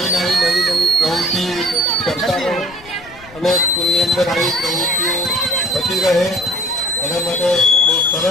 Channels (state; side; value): noise; left; rumble, 23 dB below the sound